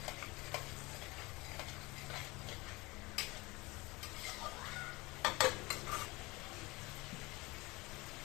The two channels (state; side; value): quieter; right; 23.3 dB